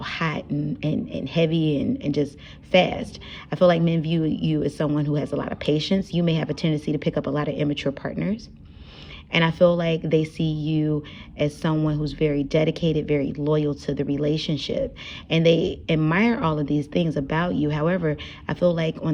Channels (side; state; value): both; identical; correlation 1.00